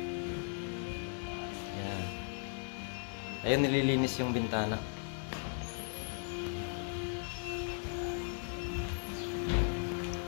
Ayan. Ayun, nililinis yung bintana.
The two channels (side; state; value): right; silent; 53 dB below the other